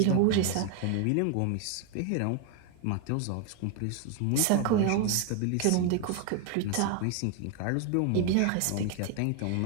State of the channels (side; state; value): both; different; correlation 0.01